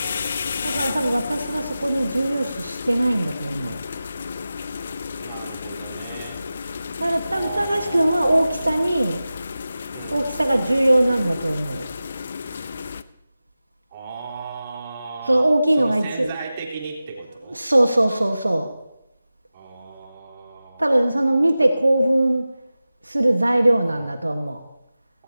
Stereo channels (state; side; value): inverted; both; correlation -0.95